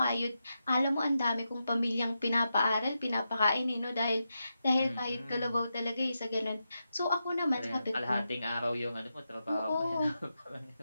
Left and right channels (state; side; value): inverted; both; correlation -0.88